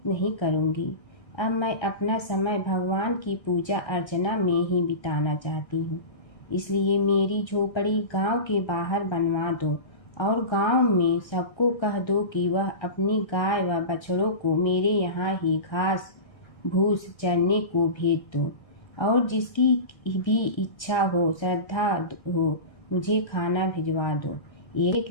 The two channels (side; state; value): right; late; 1.3 ms